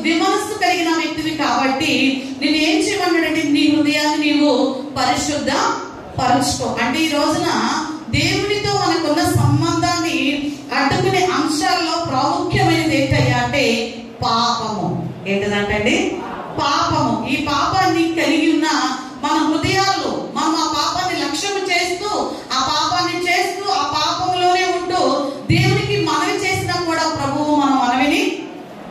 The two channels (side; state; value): both; identical; correlation 1.00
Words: విమనస్సు కలిగిన వ్యక్తివి కాబట్టి నేను ఏం చేయమన్నాడంటే నీ హృదయాన్ని నీవు పరిశుద్ధ పరుచుకో. అంటే ఈ రోజున దేవునితో మనకున్న సంబంధాన్ని అడ్డుకునే అంశాల్లో ప్రాముఖ్యమైనది ఏంటయ్యా అంటే పాపము. ఏంటంటే పాపము. ఈ పాపాన్ని కలిగి ఉన్న మన హృదయాల్లో మనం ఆ పాపాన్ని లక్ష్యం చేస్తూ ఆ పాపాన్ని చేస్తూ ఆ పాపంలోనే ఉంటూ దేవునికి మనవి చేసినా కూడా ప్రభువు మన మనవిని